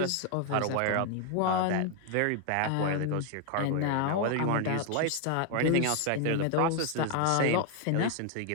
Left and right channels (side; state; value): both; different; correlation 0.00